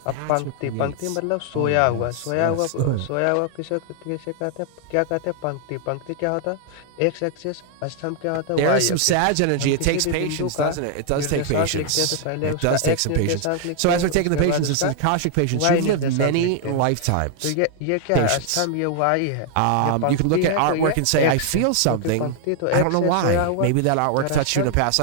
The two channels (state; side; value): different; both; correlation 0.00